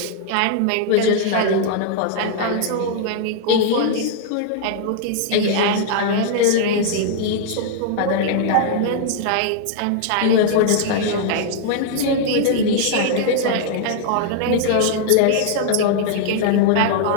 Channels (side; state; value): both; different; correlation 0.00